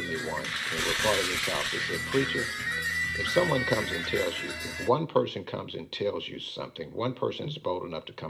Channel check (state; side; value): identical; both; correlation 1.00